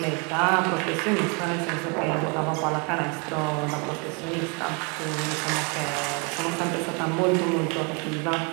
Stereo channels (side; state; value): left; quieter; 33.2 dB